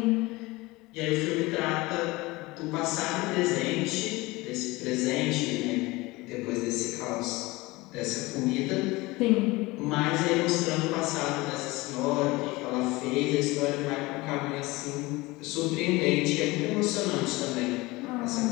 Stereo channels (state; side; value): quieter; right; 21.8 dB